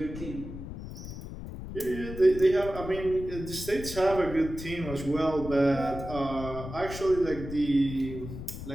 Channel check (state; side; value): noise; left; rumble, 10 dB below the sound